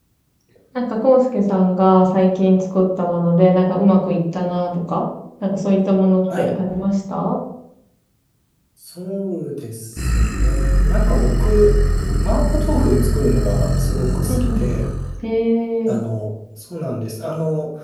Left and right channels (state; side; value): identical; both; correlation 1.00